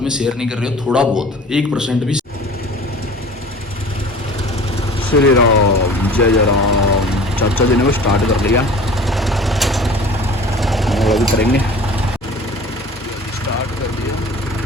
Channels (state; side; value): normal; both; correlation 0.43